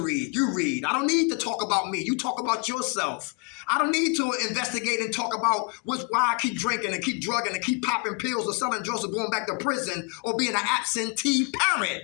You read. I don't need to talk about me. You talk about yourself. I don't need to investigate and talk about why I keep drinking and keep drugging and keep popping pills or selling drugs or going back to prison or being an absentee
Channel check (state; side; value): quieter; right; 32.7 dB